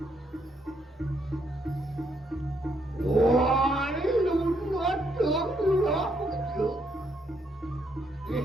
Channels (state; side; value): normal; both; correlation 0.74